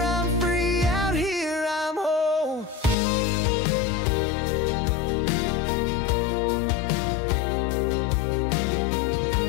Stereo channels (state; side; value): drops out; right; at 3.0 s